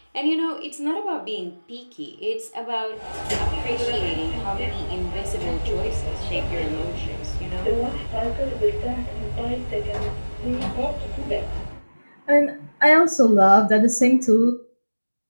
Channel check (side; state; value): both; inverted; correlation -1.00